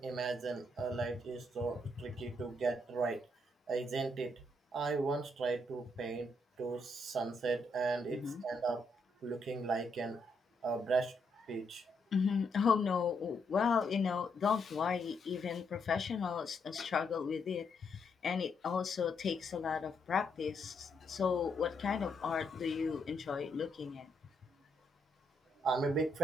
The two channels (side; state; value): both; normal; correlation 0.77